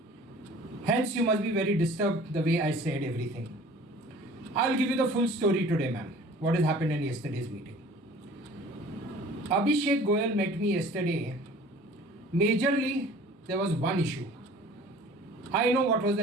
Hence, you must be very disturbed the way I said everything. I'll give you the full story today, ma'am. What has happened in yesterday's meeting. Abhishek Goyal met me yesterday. Majorly, there was one issue. I know what was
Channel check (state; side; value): normal; both; correlation 0.47